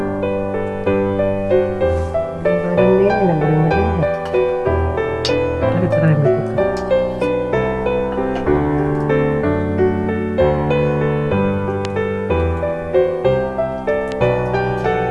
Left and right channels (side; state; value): both; identical; correlation 1.00